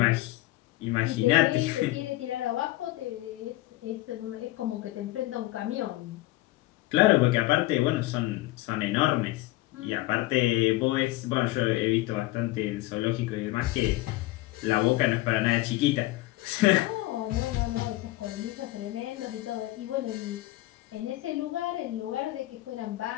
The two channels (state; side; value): quieter; right; 18.3 dB